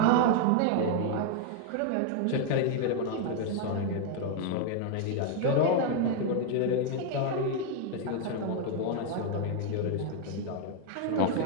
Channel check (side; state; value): both; different; correlation 0.00